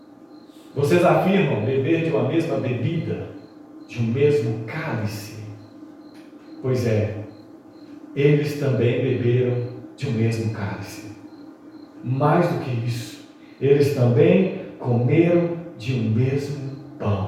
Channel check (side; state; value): both; identical; correlation 1.00